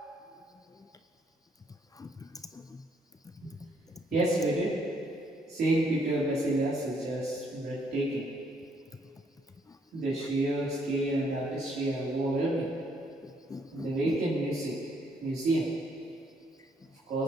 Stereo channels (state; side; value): normal; both; correlation 0.70